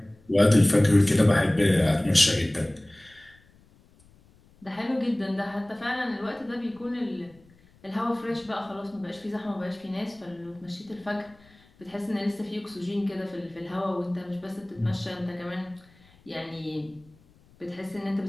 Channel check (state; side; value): noise; left; rumble, 29 dB below the sound